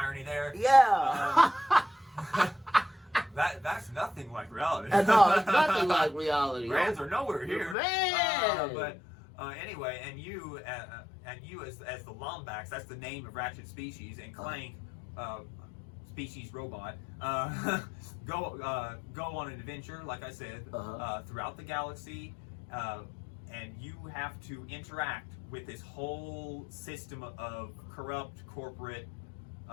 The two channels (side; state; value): right; drops out; at 7.8 s